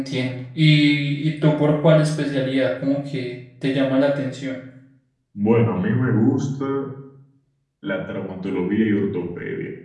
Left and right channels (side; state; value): both; identical; correlation 1.00